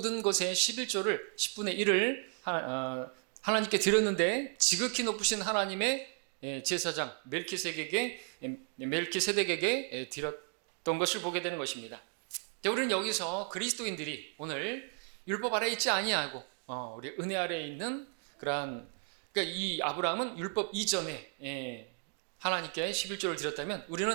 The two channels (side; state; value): left; quieter; 39.8 dB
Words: 것의 11조를 10분의 1을 하나님께 드렸는데 지극히 높으신 하나님의 제사장 멜키세덱에게 드렸던 것을 보게 되는 것입니다. 우리는 여기서 그리스도인들이 오늘 율법 아래 있지 아니하고 우리 은혜 아래에 있는 그러니까 이 아브라함은 율법 이전에 하나님께 11조를 드렸다면